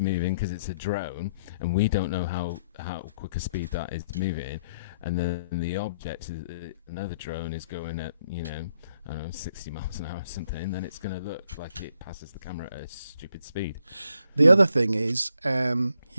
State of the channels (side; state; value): both; inverted; correlation -0.72